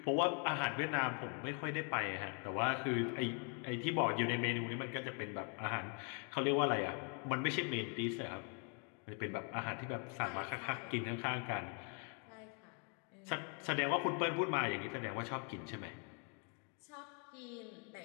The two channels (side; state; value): right; quieter; 39.4 dB